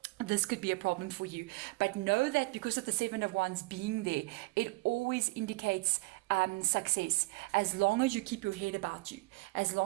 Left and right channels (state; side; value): quieter; left; 23.6 dB